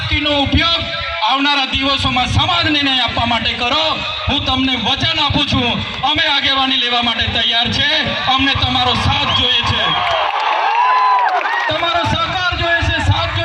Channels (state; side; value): identical; both; correlation 1.00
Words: ઉપયોગ આવનારા દિવસોમાં સમાજને ન્યાય આપવા માટે કરો. હું તમને વચન આપું છું, અમે આગેવાની લેવા માટે તૈયાર છે. અમને તમારો સાથ જોઈએ છે, તમારો સહકાર જોઈએ છે, સાથ